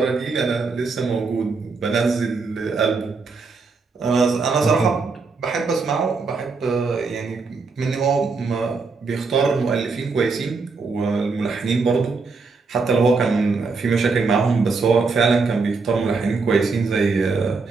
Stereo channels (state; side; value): quieter; left; 4.4 dB